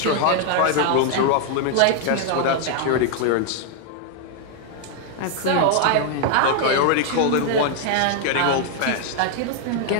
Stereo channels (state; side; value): different; both; correlation 0.00